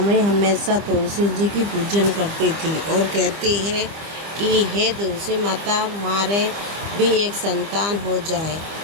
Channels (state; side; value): late; left; 25 ms